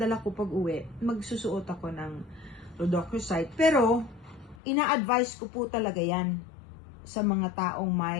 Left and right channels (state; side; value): drops out; right; at 4.6 s